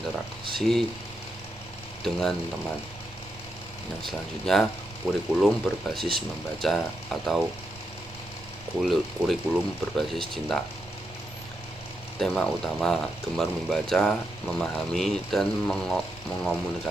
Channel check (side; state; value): right; noise; rumble, 21 dB below the sound